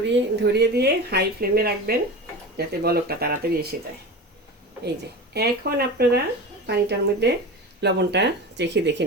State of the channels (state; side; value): normal; both; correlation 0.29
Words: ধরিয়ে দিয়ে হাই ফ্লেমে রাখবেন, যাতে বলকটা তাড়াতাড়ি এসে যায়। এই যে এখন আপনারা পানিটার মধ্যে লবণটা চেখে দেখে